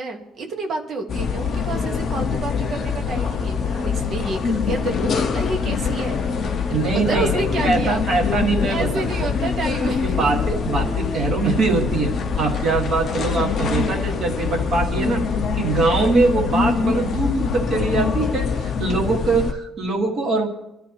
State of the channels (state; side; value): normal; both; correlation 0.63